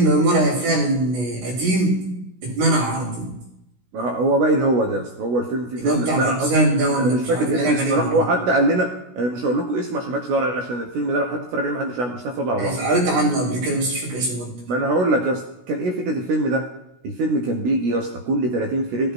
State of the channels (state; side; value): late; left; 16 ms